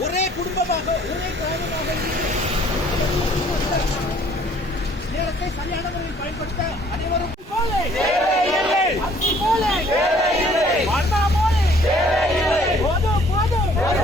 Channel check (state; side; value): normal; both; correlation 0.58